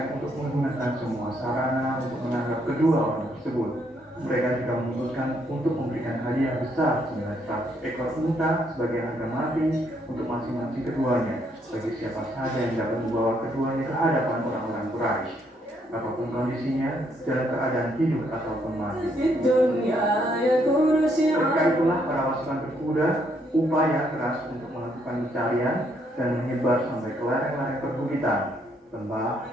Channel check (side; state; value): both; normal; correlation 0.72